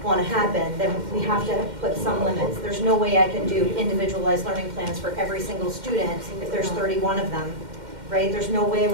want to happen, then we have to put some limits. There's no way I can do individualized learning plans for every single student if there's 31 of them, right? There's no way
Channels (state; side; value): late; left; 2.1 ms